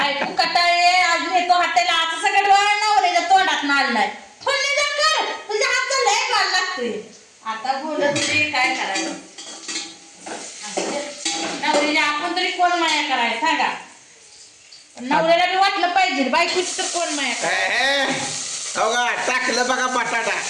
कटाळे आज येतो हॉटेलला असं सगळं डोळा नवऱ्याच्या तोंडात नाळलाय. फोडणी जा कर तुझ्या हातचं लय माल लागतोय. आता बोलत तरी काय करायचं. नवऱ्याला आपण तरी कोण माया करायला सांगा. नवऱ्याला बी वाटलं पाहिजे बायकोची तर कोण माया करायला. बघा टाकलं बघा बटाटा.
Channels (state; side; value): identical; both; correlation 1.00